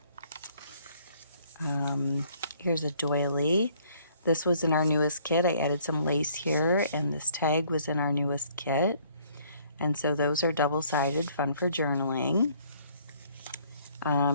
Here's a doily. This was in our newest kit. I added some lace here, and this tag was in our newest kit. And so those are double-sided, fun for journaling.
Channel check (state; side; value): inverted; both; correlation -0.61